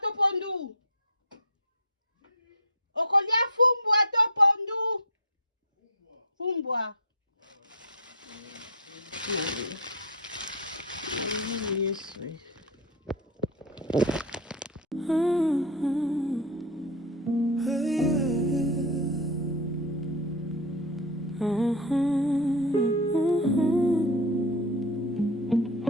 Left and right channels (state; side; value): normal; both; correlation 0.08